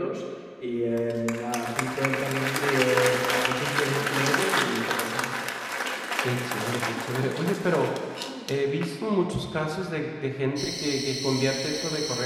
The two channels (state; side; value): identical; both; correlation 1.00